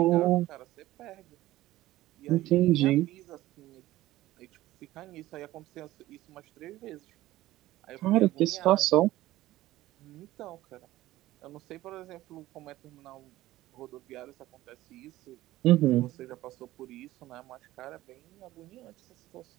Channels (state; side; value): quieter; left; 16.2 dB